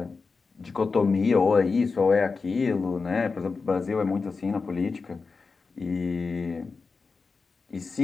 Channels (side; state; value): right; quieter; 4.5 dB